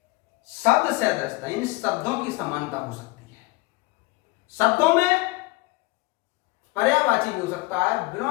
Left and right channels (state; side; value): quieter; right; 22.0 dB